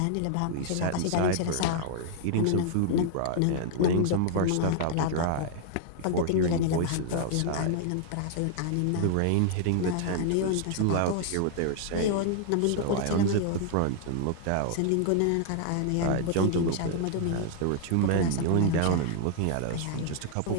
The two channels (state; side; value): different; both; correlation -0.01